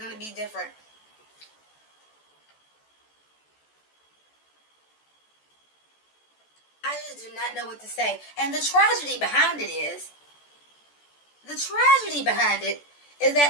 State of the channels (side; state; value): right; late; 14 ms